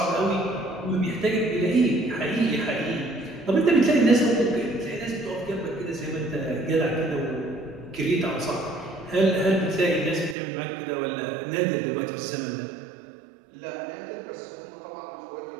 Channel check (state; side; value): drops out; left; at 10.4 s